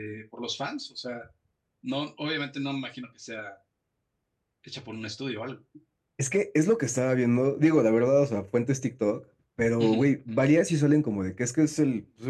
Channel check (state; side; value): identical; both; correlation 1.00